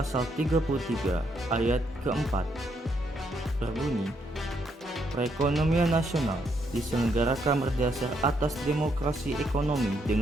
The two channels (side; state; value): both; normal; correlation 0.75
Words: 33 ayat keempat berbunyi, perekonomian nasional diselenggarakan berdasar atas demokrasi ekonomi